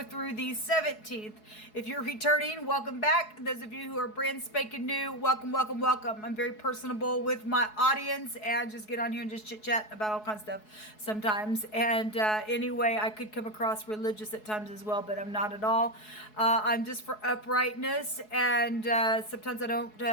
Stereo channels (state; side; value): late; right; 4.7 ms